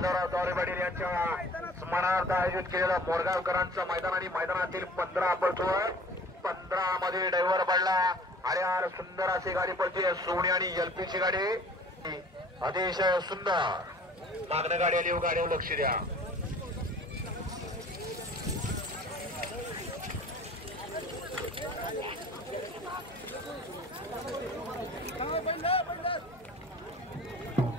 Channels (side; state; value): both; normal; correlation 0.47